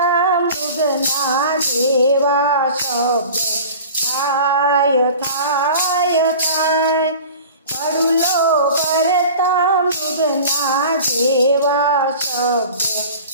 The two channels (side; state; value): both; inverted; correlation -0.40